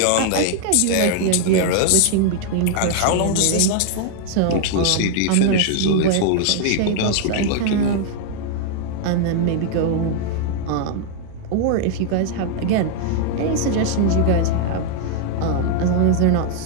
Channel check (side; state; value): both; different; correlation 0.00